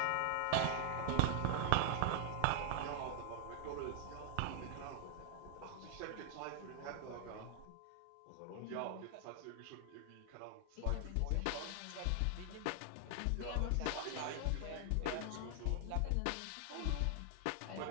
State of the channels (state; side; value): different; both; correlation 0.00